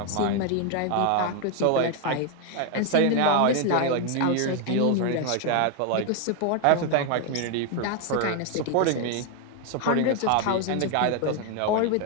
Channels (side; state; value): both; different; correlation 0.01